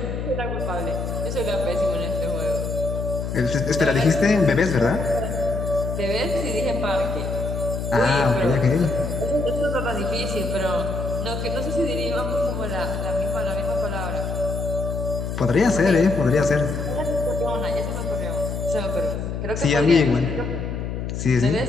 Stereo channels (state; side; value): noise; left; hum, 4 dB below the sound